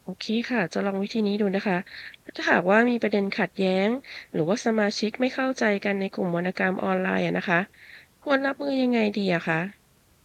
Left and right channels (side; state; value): both; identical; correlation 1.00